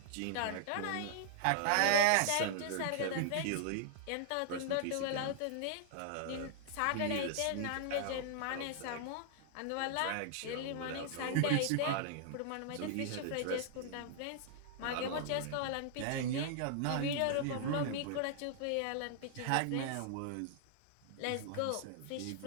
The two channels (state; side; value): different; both; correlation -0.01